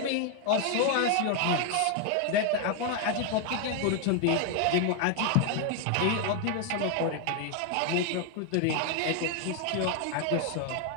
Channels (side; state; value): both; different; correlation 0.00